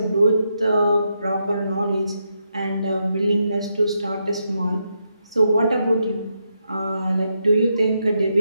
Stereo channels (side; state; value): both; inverted; correlation -0.82